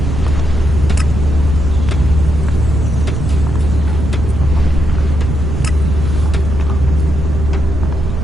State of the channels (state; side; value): noise; right; rumble, 3 dB below the sound